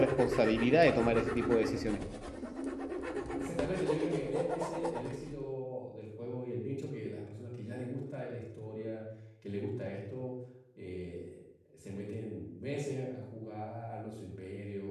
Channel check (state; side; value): identical; both; correlation 1.00